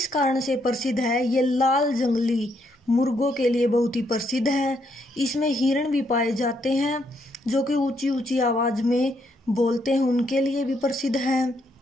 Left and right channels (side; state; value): both; normal; correlation 0.75